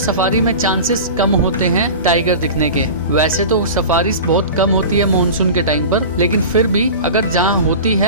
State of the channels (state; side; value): inverted; both; correlation -0.34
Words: में चांसेस कम होते हैं टाइगर दिखने के। वैसे तो सफारी बहुत कम होती है मॉनसून के टाइम पर, लेकिन फिर भी अगर जहाँ होती